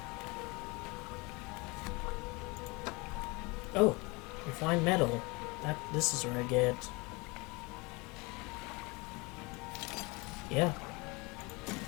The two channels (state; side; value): quieter; right; 26.3 dB